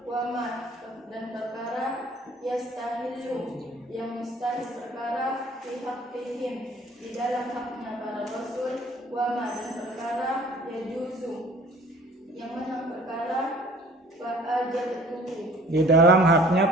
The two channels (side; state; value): both; normal; correlation 0.52